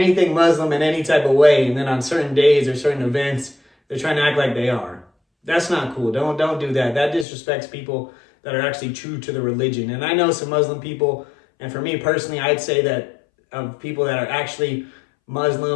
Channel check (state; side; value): drops out; right; at 7.2 s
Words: Muslim in any type of way. And then on certain days or certain events, they're trying to act like they are. That's not cool. Don't do that. That disrespects people that are actually true to the religion. And I know some Muslim people, and for me personally, I'd say that of people that are actually